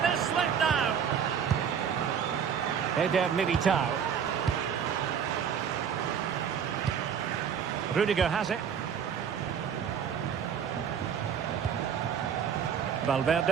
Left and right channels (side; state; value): left; quieter; 7.7 dB